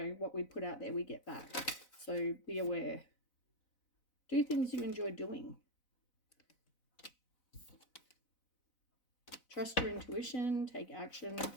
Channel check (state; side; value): late; right; 4.0 ms